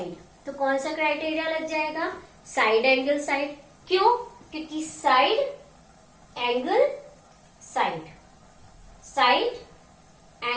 तो कौन सा क्राइटेरिया लग जाएगा? Side angle side. क्यों? क्योंकि side angle side, side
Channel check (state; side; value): identical; both; correlation 1.00